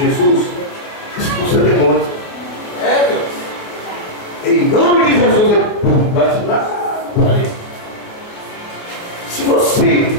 Jesus expulsa demônio. Em nome de Jesus, ele bate lá, ali. Se você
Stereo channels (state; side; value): late; right; 28 ms